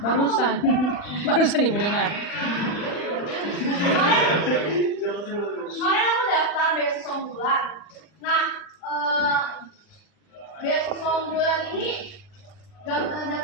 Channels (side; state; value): right; late; 40 ms